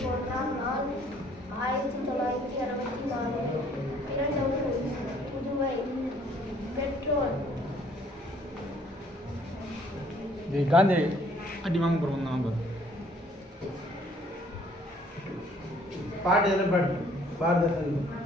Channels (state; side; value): normal; both; correlation 0.60